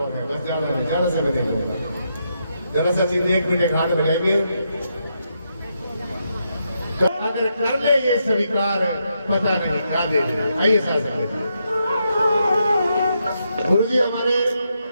है, बस ज्यादा समय नहीं होगा। जरा सा चिंता 1 मिनट हाथ बढ़ाएंगे, तो अगर कर ले ये स्वीकार पता नहीं खा दे। आइए साथ गुरु जी हमारे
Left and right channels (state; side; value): inverted; both; correlation -0.81